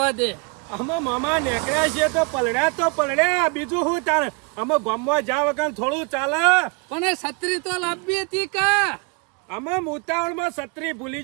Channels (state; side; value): quieter; left; 31.4 dB